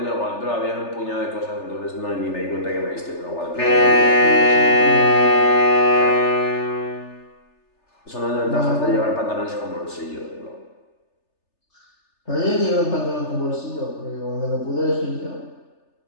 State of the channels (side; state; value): right; late; 3.3 ms